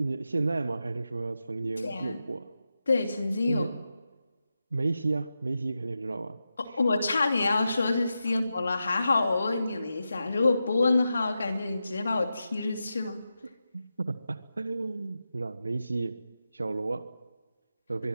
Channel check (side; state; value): both; inverted; correlation -0.90